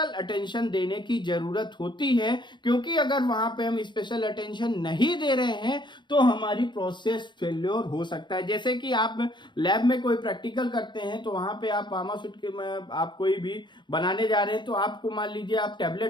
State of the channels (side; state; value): right; late; 0.22 ms